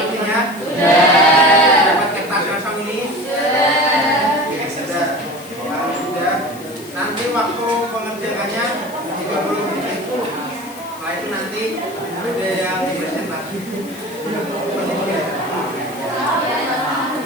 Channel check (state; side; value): noise; left; hiss, 19 dB below the sound